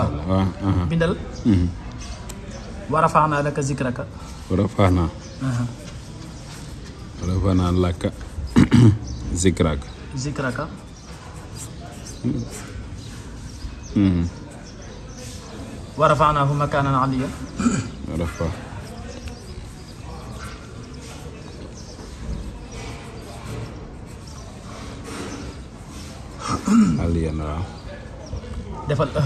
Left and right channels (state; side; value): identical; both; correlation 1.00